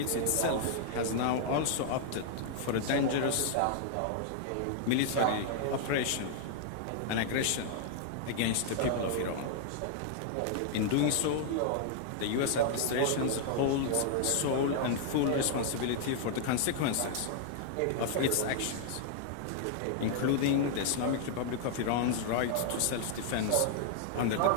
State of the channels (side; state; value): both; different; correlation -0.01